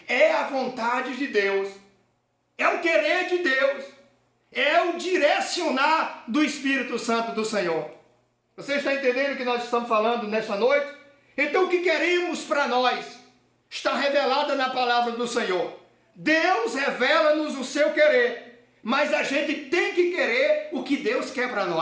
é a vontade de Deus, é o querer de Deus, é o direcionar do Espírito Santo do Senhor. Você está entendendo o que nós estamos falando nesta noite? Então o que queremos para nós está revelado na palavra do Senhor. Deus revela-nos o seu querer, mas a gente tem que querer o que Deus quer para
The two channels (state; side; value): identical; both; correlation 1.00